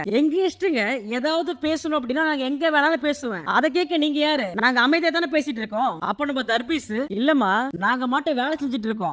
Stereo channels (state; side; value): identical; both; correlation 1.00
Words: எங்க இஷ்டங்க, ஏதாவது பேசணும் அப்படின்னா நாங்க எங்க வேணாலும் பேசுவேன், அதை கேட்க நீங்க யாரு? நாங்க அமைதியா தானே பேசிட்டு இருக்கோம். அப்ப நம்ம தர்பீஸ், இல்லம்மா நாங்க மட்டும் வேலை செஞ்சுட்டு